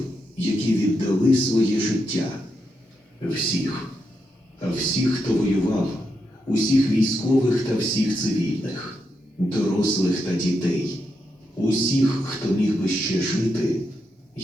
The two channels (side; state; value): both; normal; correlation 0.83